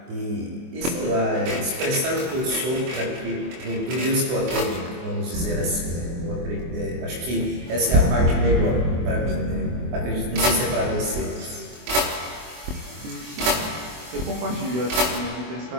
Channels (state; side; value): late; left; 24 ms